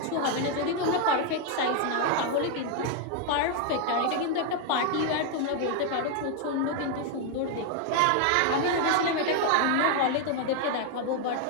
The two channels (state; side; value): different; both; correlation 0.00